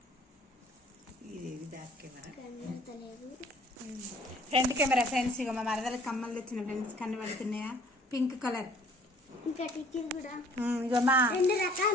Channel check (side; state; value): both; normal; correlation 0.56